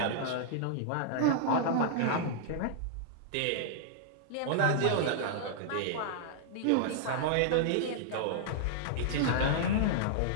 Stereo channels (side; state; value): both; different; correlation -0.02